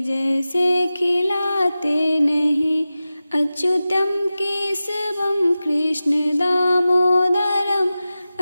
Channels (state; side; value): inverted; both; correlation -0.94